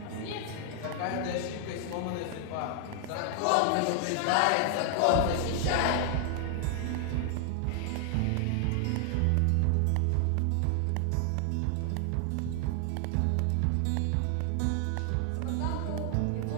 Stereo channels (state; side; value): different; both; correlation 0.00